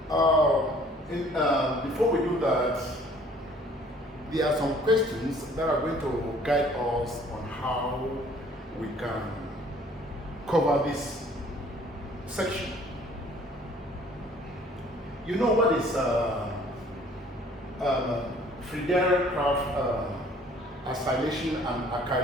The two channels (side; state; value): both; normal; correlation 0.56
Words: Before we do that, there are some questions that are going to guide us on how we can cover this section. You know what is Friedel acylation and